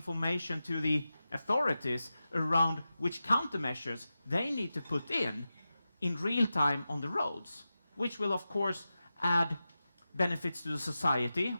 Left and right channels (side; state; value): both; inverted; correlation -0.93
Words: to the authorities around which countermeasures they need to put in real time on the roads, which will of course add benefits to the society